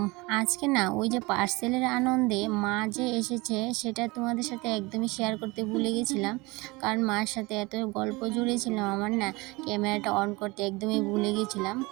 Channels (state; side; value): quieter; left; 23.9 dB